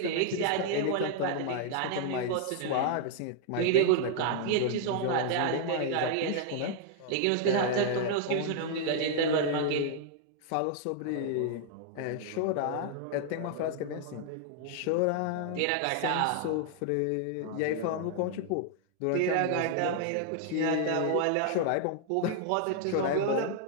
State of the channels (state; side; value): different; both; correlation 0.00